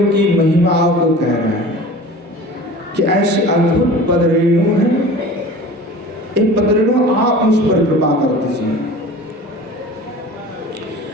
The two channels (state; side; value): normal; both; correlation 0.39